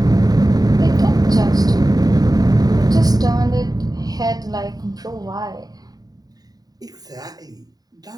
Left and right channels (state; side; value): late; left; 0.18 ms